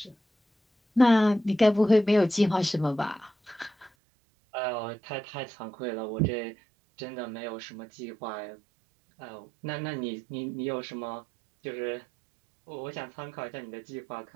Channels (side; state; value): left; drops out; at 3.9 s